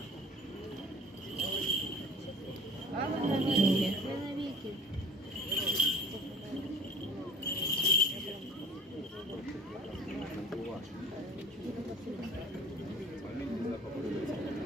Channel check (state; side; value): normal; both; correlation 0.46